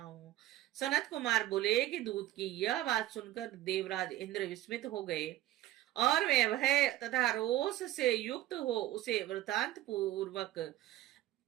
हूँ। सनत कुमार बोले कि दूत की यह बात सुनकर देवराज इंद्र विस्मित हो गए और वे भय तथा रोष से युक्त हो उसे वृतांत पूर्वक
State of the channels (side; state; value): left; quieter; 14.7 dB